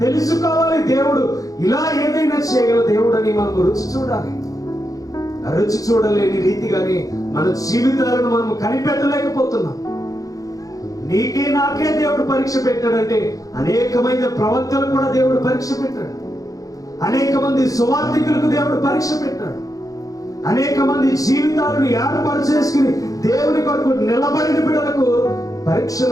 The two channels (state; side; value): late; right; 0.17 ms